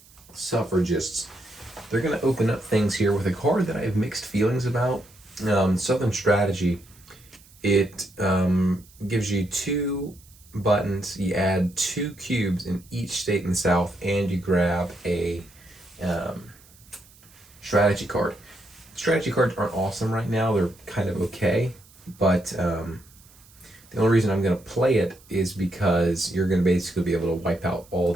suffragists. They're going to open up things here with a card that I have mixed feelings about. Southern Strategy. It gives you two buttons. You add two cubes in each state in the South, and you grab a strategy card. Strategy cards aren't awesome right now. They're kind of okay, but the only reason I'm going to play it is because you're going to basically be able to wipe out all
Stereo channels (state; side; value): noise; right; hiss, 26 dB below the sound